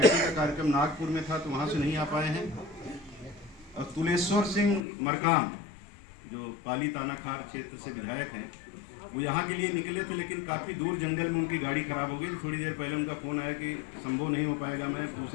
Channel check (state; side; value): drops out; right; at 4.8 s